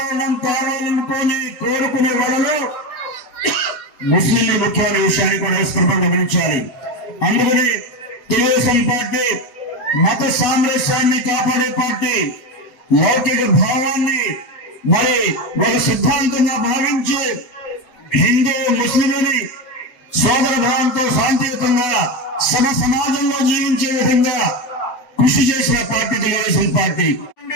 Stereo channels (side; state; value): right; late; 8.1 ms